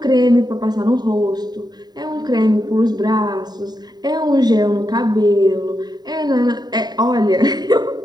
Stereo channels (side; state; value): left; late; 0.20 ms